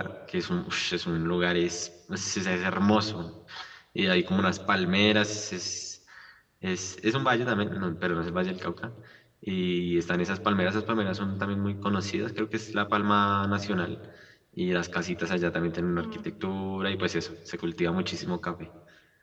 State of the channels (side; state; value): both; identical; correlation 1.00